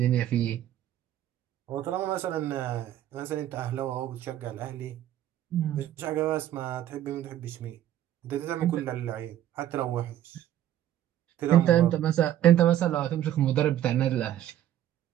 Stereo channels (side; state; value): left; quieter; 12.1 dB